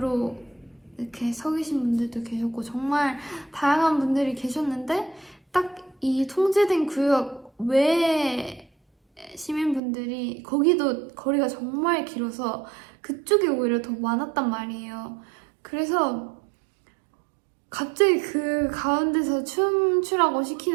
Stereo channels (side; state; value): left; drops out; at 9.8 s